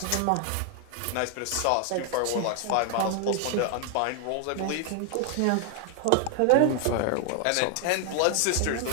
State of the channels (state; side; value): different; both; correlation 0.00